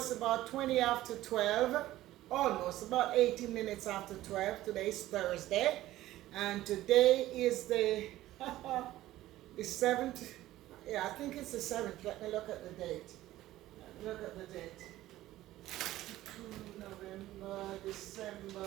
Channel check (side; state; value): left; quieter; 15.3 dB